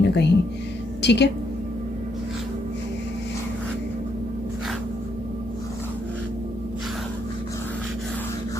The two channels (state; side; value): normal; both; correlation 0.75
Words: ना कहीं, ठीक है।